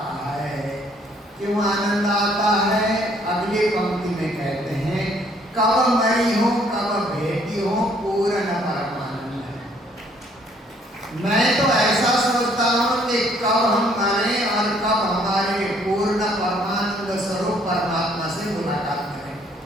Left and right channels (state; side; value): normal; both; correlation 0.63